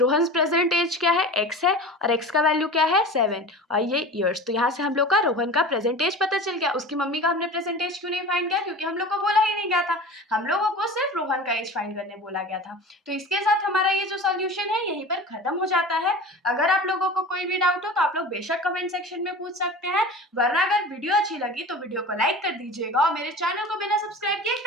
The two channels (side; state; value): both; normal; correlation 0.35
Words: present age क्या है, x है, और x का वैल्यू क्या है, 7, और ये ईयर्स। तो यहाँ से हम लोग का रोहन का प्रेजेंट एज पता चल गया। उसकी मम्मी का हमने प्रेजेंट एज क्यों नहीं फाइंड किया, क्योंकि हम लोग को बोला ही नहीं गया था, हम लोगों को सिर्फ रोहन का एज फाइंड करने बोला गया था। तो इसके साथ हमारा ये जो सॉल्यूशन है यहीं पर खत्म हो जाता है। अगर आप लोगों को कोई भी डाउट हो तो आप लोग बेशक कमेंट सेक्शन में पूछ सकते हैं, वरना अगर वीडियो अच्छी लगी तो वीडियो को लाइक कर दीजिएगा और मेरे चैनल को बिना सब्सक्राइब किए